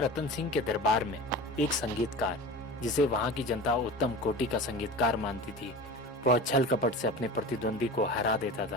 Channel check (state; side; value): normal; both; correlation 0.33